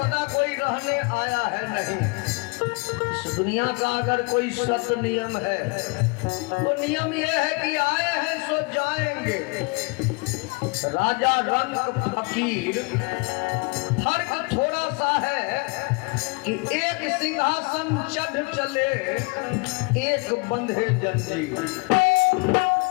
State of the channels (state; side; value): quieter; right; 29.4 dB